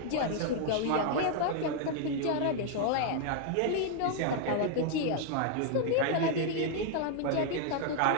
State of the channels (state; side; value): different; both; correlation 0.00